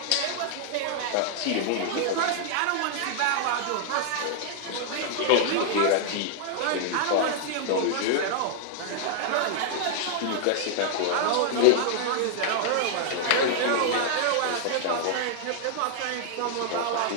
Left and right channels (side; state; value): both; different; correlation -0.01